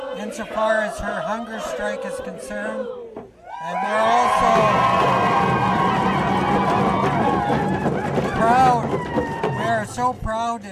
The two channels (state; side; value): identical; both; correlation 1.00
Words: insofar as her hunger strike is concerned. And we're also proud, we are so proud